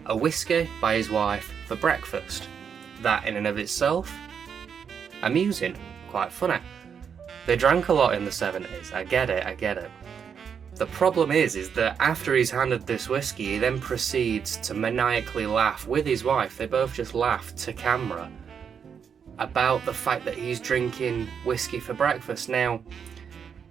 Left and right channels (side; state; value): left; quieter; 7.1 dB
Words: a whiskey by his wife for breakfast. That in and of itself, amusing, quite funny. They drank a lot in the 70s, I get it. The problem is that after he's handed this whiskey, he then proceeds to maniacally laugh with his wife. They both just laugh to camera about the fact that he's drinking whiskey for breakfast. Now,